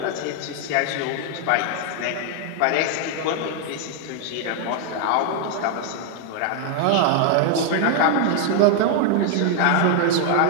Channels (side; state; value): both; different; correlation 0.00